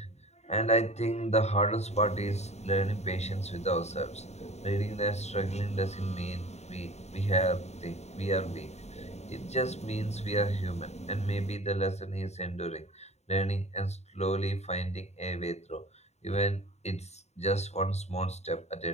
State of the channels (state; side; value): late; right; 0.32 ms